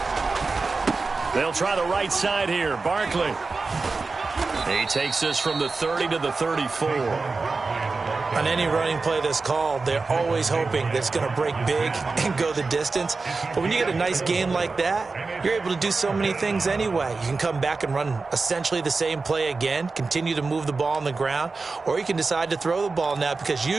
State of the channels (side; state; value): left; quieter; 4.0 dB